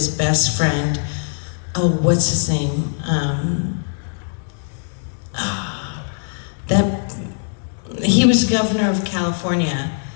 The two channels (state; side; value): silent; right; digital silence